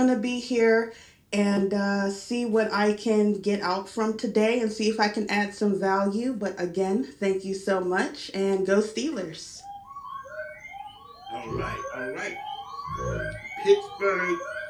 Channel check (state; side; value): identical; both; correlation 1.00